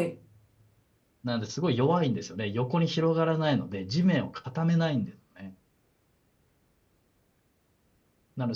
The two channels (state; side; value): identical; both; correlation 1.00